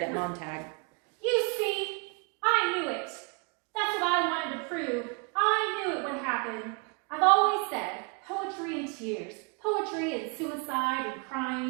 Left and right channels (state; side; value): quieter; left; 33.4 dB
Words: at Montag. You see, I knew it. That's what I wanted to prove. I knew it would happen. I've always said poetry and tears, poetry and suicide and